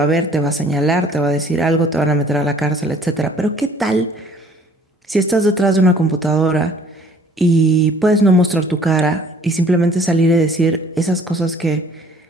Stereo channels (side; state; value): both; normal; correlation 0.55